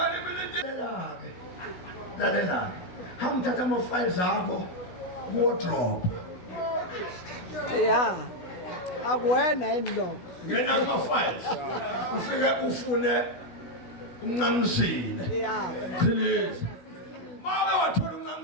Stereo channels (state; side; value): late; right; 17 ms